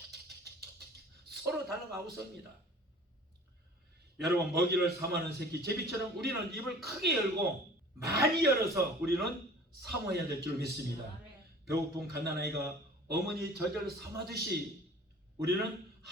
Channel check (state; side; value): normal; both; correlation 0.46